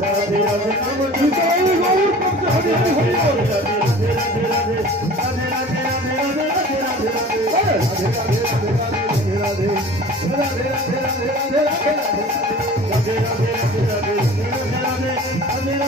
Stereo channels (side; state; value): both; normal; correlation 0.42